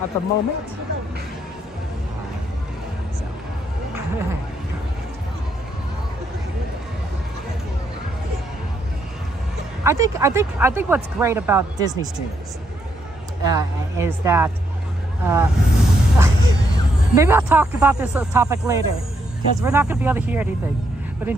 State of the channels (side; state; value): both; normal; correlation 0.76